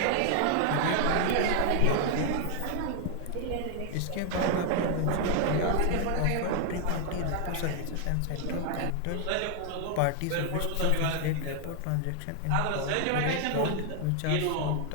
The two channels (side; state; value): both; different; correlation 0.00